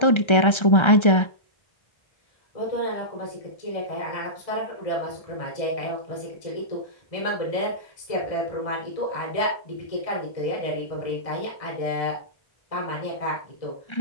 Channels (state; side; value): late; right; 1.3 ms